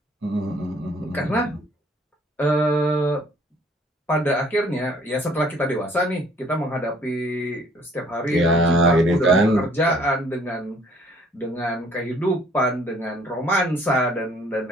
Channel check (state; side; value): normal; both; correlation 0.59